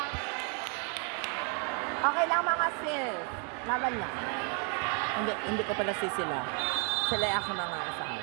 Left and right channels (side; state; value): left; quieter; 38.1 dB